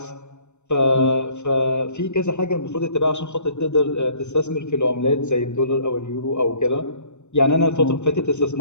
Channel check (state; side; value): late; right; 0.83 ms